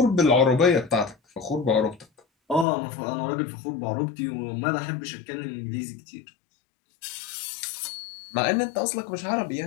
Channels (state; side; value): drops out; right; at 2.7 s